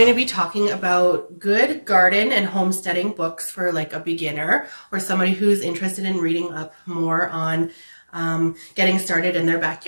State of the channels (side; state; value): both; inverted; correlation -1.00